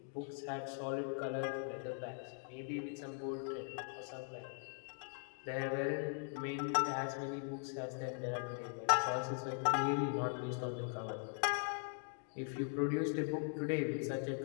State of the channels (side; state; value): right; silent; 51 dB below the other